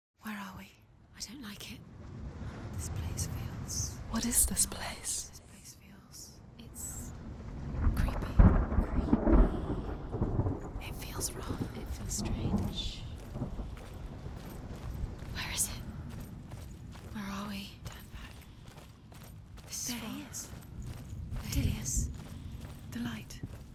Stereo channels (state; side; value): identical; both; correlation 1.00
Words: Where are we? I don't like it. This place feels... What is this place? This place feels... It's... creepy. It feels wrong. It feels strange. Where is it? Where are we? Turn back. There he is. There he is. The light.